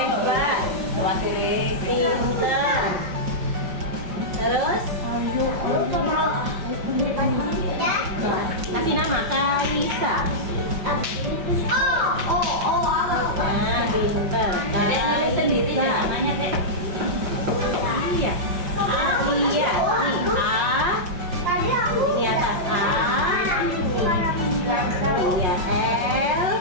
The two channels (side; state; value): left; late; 5.5 ms